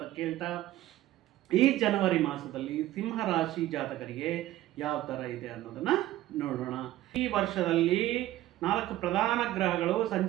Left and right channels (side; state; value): left; quieter; 14.8 dB